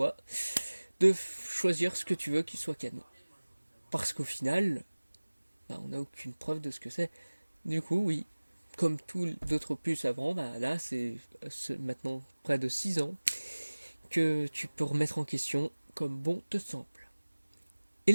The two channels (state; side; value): inverted; both; correlation -1.00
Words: de choisir ce que tu veux qu'il soit canon. Parce qu'au final, bah, on n'a aucune preuve de ce que c'est. Du coup, oui, comme tous d'autres opus avant, bah, là c'est maintenant près de 6 ans que tu peux remettre en question comme bon te semble. Et